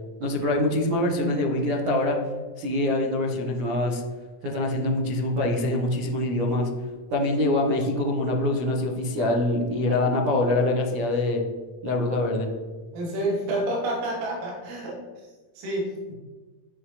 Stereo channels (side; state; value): left; late; 17 ms